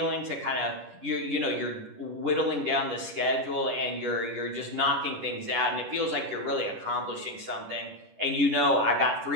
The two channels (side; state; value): left; late; 10 ms